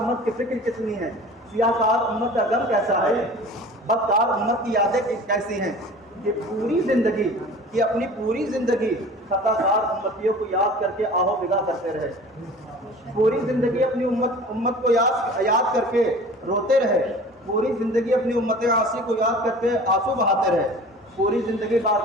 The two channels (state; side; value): normal; both; correlation 0.42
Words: کی فکر کتنی ہے، سیاہ کار امت کا غم کیسا ہے، بدکار امت کی یادیں کیسی ہیں، کہ پوری زندگی، کہ اپنی پوری زندگی خطا کار امتیوں کو یاد کر کے آہو بگا کرتے رہے، پوری زندگی اپنی امت کو یاد کر کے روتے رہے، پوری زندگی اپنی امت عاصی کو یاد کر کے آنسو بہاتے رہے، پوری زندگی